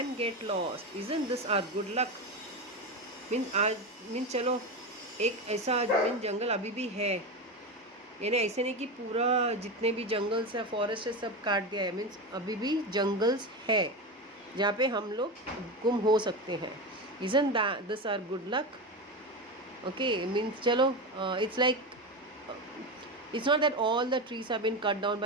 get lost, isn't this our good luck. Mean चलो एक ऐसा जंगल अभी भी है, यानी ऐसे नहीं कि पूरा जितने भी जंगल्स है फॉरेस्ट है सब काट दिया है. मीन्स अभी भी जंगल्स है जहाँ पे हम लोग गुम हो सकते हैं. Isn't that this our good luck? Okay, means चलो it's like it's not that all the trees have been cut down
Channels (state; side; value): normal; both; correlation 0.19